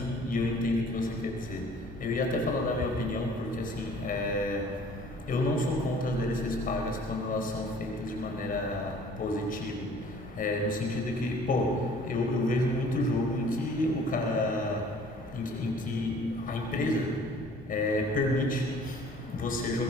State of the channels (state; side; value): normal; both; correlation 0.52